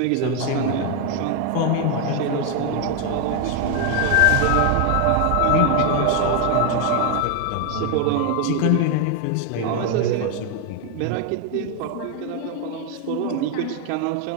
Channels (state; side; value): different; both; correlation 0.01